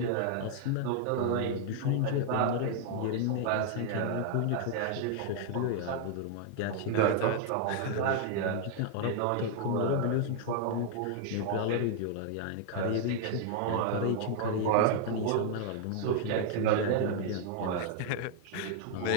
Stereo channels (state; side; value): different; both; correlation 0.00